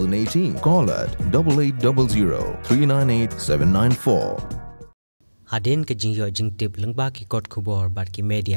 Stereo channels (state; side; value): inverted; both; correlation -1.00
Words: Call at 8800 398 794. Aden ke jingyo jingtip lengba ki kot kubor bat ki